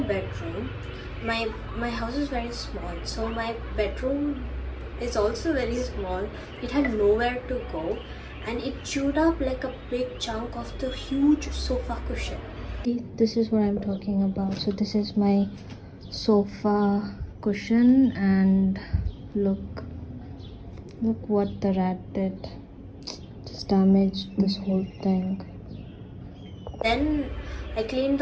My house is very small, so my bedroom is also very small. It had nowhere to go, and it chewed up like a big chunk of the huge sofa cushion. See, this is what I'm talking about. So this is my sofa cushion, and look what the rat did. Just damaged this whole thing. Then I cleaned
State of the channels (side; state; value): both; identical; correlation 1.00